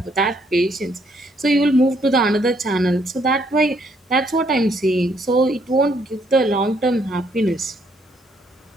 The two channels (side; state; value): both; normal; correlation 0.70